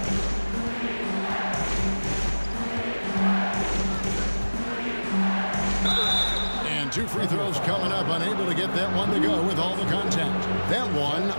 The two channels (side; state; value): both; inverted; correlation -1.00